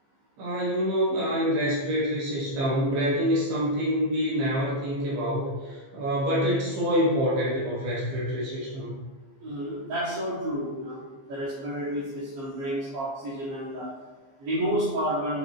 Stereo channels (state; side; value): late; left; 15 ms